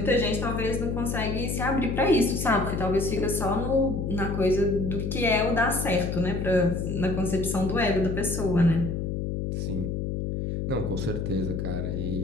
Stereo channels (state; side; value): noise; left; hum, 2 dB below the sound